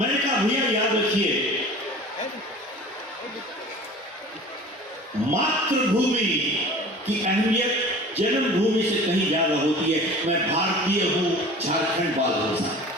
कहा भैया याद रखिए, मातृभूमि की अहमियत जन्मभूमि से कहीं ज्यादा होती है। मैं भारतीय हूं, झारखंड बाद हूं साहब।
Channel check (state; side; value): normal; both; correlation 0.41